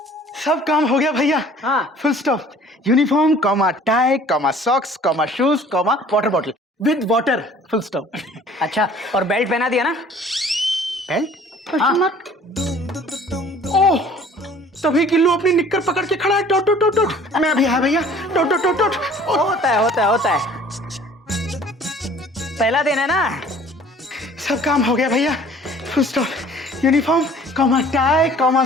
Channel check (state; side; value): normal; both; correlation 0.51